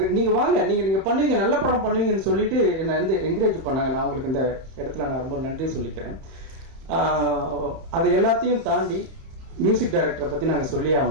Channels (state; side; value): late; left; 30 ms